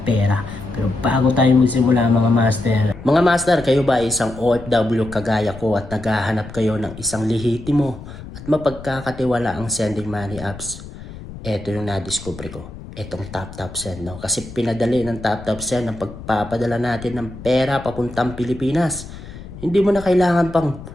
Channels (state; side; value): noise; left; rumble, 14 dB below the sound